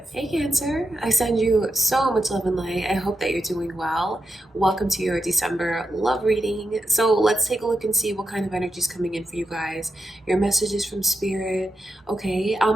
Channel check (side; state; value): both; normal; correlation 0.86